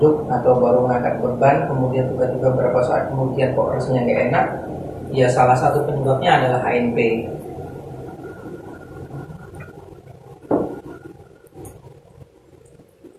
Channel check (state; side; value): identical; both; correlation 1.00